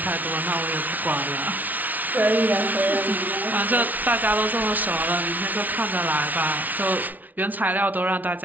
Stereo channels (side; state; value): left; late; 0.078 ms